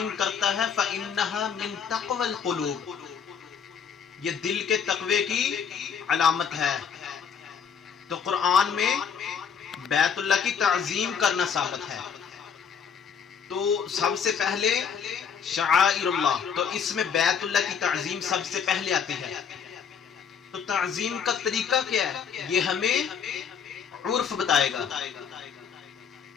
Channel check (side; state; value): right; quieter; 7.1 dB